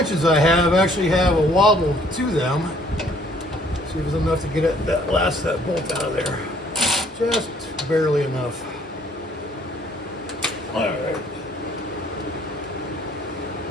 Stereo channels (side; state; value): both; normal; correlation 0.61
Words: I have actually have a wobble to them. See if there's enough to get that bolt out of there. Just barely enough. All right.